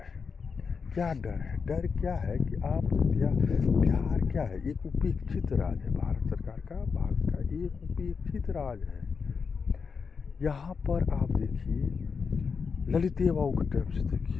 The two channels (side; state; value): right; quieter; 5.5 dB